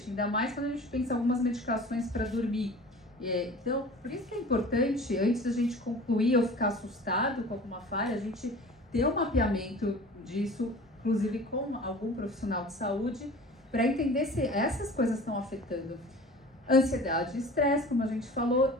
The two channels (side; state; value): both; normal; correlation 0.41